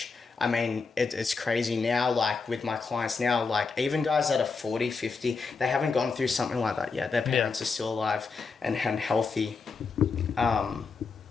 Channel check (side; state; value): right; quieter; 4.7 dB